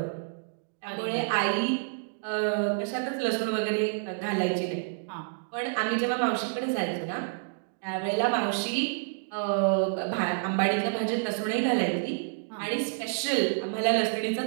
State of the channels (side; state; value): left; silent; digital silence